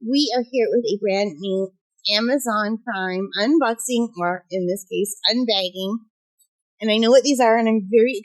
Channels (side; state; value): both; identical; correlation 1.00